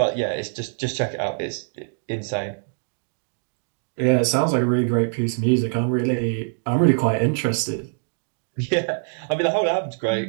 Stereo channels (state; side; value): silent; left; digital silence